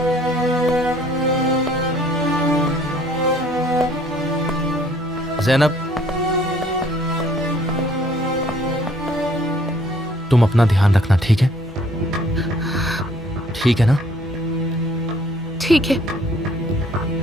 ज़ैनब, तुम अपना ध्यान रखना, ठीक है? ठीक है ना? ठीक है।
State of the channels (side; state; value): both; normal; correlation 0.59